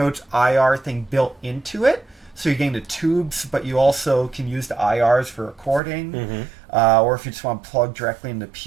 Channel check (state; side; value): drops out; left; at 5.8 s